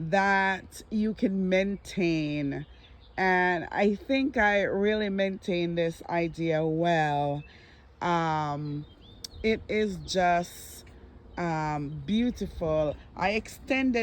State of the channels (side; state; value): both; identical; correlation 1.00